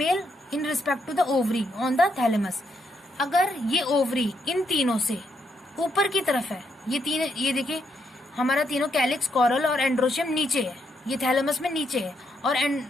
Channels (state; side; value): normal; both; correlation 0.78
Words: respect to the ovary on the thalamus. अगर ये ओवरी इन तीनों से ऊपर की तरफ है, ये देखिए हमारा तीनों कैलिक्स, कॉरल और एंड्रोशियम नीचे है, ये थैलेमस में नीचे है, और